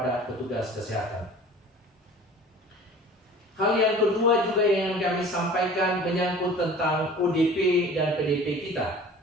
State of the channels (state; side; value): normal; both; correlation 0.44